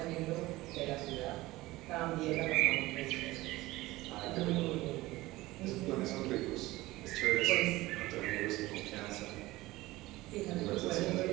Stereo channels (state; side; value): quieter; left; 18.8 dB